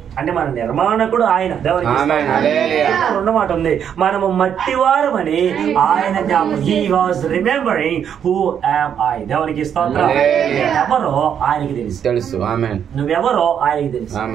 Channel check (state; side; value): quieter; left; 8.5 dB